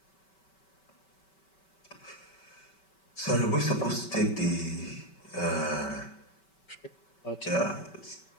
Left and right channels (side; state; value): right; late; 5.2 ms